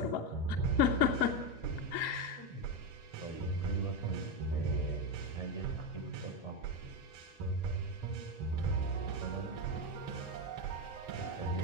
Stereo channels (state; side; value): late; right; 2.2 ms